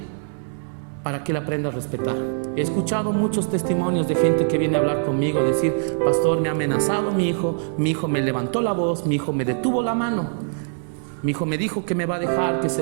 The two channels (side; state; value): left; silent; 63 dB below the other